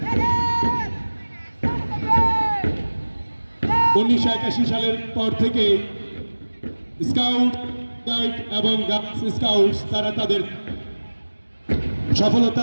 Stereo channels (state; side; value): inverted; both; correlation -1.00